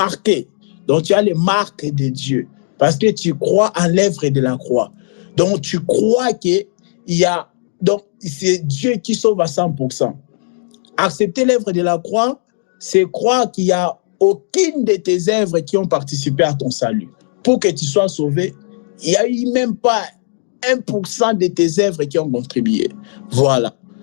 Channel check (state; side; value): silent; right; digital silence